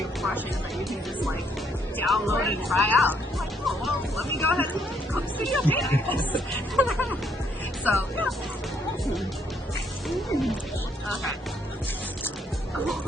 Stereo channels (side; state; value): both; normal; correlation 0.71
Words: of brushes that you can just like download and try out. I'm like, oh well, let me go ahead and Clip Studio paint this. So yeah. Okay.